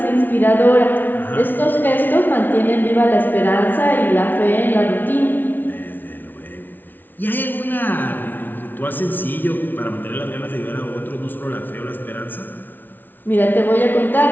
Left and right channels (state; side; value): late; right; 0.089 ms